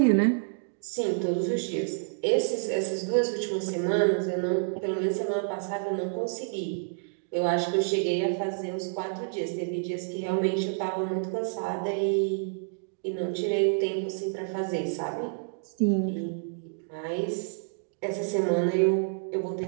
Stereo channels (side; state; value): left; silent; digital silence